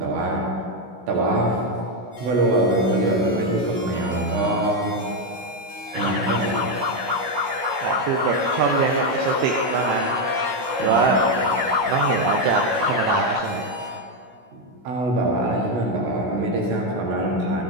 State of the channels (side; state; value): left; late; 16 ms